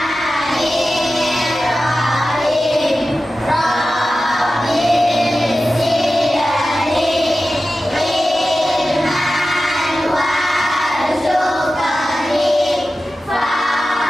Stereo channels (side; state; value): both; normal; correlation 0.94